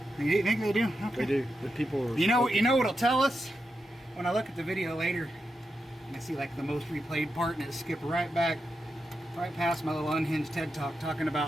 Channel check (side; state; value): both; normal; correlation 0.87